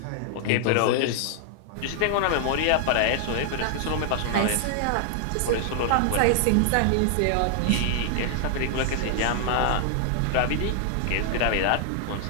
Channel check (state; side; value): different; both; correlation 0.00